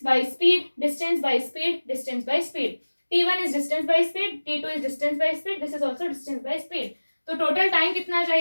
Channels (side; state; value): both; inverted; correlation -1.00